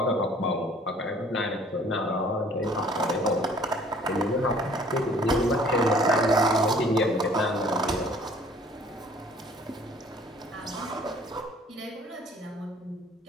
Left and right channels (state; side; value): normal; both; correlation 0.54